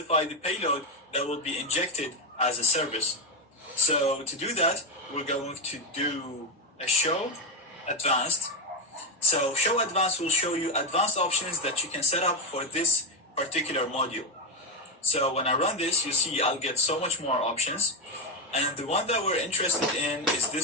the payload that will be injected as a service. So to do that, we're going to do a show advanced. So show advanced will show you advanced options that you can set up for this particular module. So when I run this, you see I'll get so much more options. And the one that we're interested in is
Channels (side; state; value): both; normal; correlation 0.11